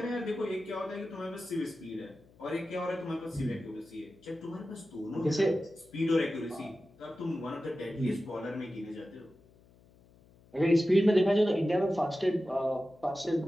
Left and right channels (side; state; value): left; noise; hum, 27 dB below the sound